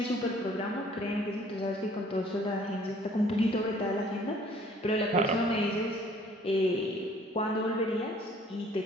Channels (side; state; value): both; normal; correlation 0.57